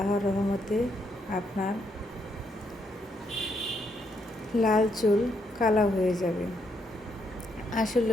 রহমতে আপনার লাল চুল কালো হয়ে যাবে।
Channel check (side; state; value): both; normal; correlation 0.76